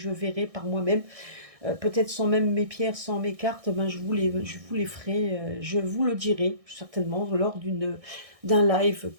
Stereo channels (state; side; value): late; left; 1.6 ms